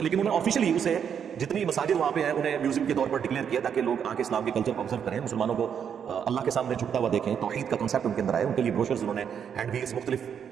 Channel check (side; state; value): left; quieter; 7.9 dB